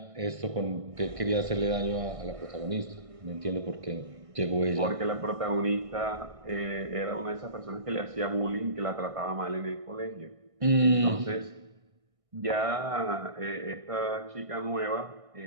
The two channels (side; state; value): left; late; 1.6 ms